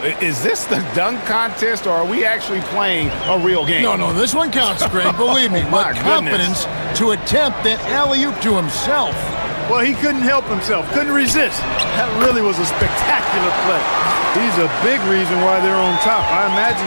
Is this the dunk contest, or are we actually playing a real game? No, this one counts, Greg. Believe me. Oh, my with confidence to attempt that alley-oop to himself. Well, he couldn't help himself, couldn't resist. That really was a spectacular play. He's a big reason why they're on top. I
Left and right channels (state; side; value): inverted; both; correlation -1.00